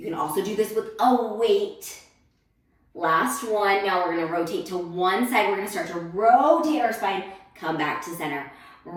can also do this with a weight. Last one. Now we're gonna rotate to one side. We're gonna start to rotate our spine, come back to center.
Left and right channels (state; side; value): identical; both; correlation 1.00